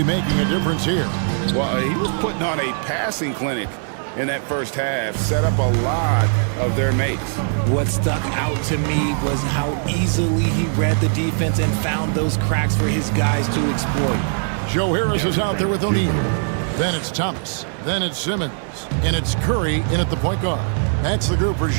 making a difference here. Well, he was putting on a passing clinic in that first half, set up a lot of their mates. What stuck out to me was how easily he read the defense and found those cracks for his guys to exploit. Joe Harris is out there with O'Neal. Then it's Thomas. Then it's Simmons. And it's Curry in at the point guard. That's the group for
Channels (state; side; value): silent; left; digital silence